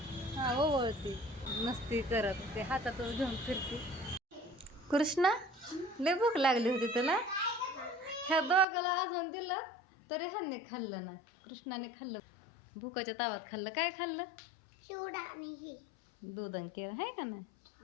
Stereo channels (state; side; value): drops out; right; at 8.7 s